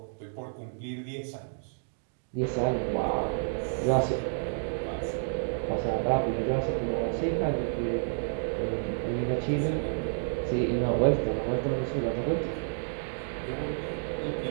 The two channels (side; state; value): left; silent; digital silence